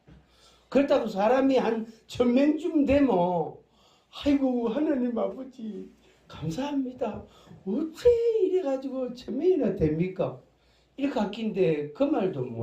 그렇다고 사람이 한 1000명쯤 되면 아이고 하나님 아버지 감사합니다. 어째 이래가지고 1000명이나 됩니까? 이렇게 아낀데 그 말도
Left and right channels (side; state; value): both; identical; correlation 1.00